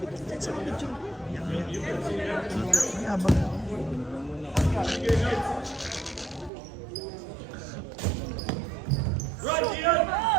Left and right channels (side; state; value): left; drops out; at 6.5 s